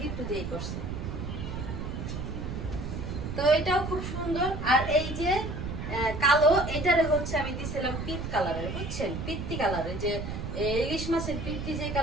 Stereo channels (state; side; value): noise; right; rumble, 5 dB below the sound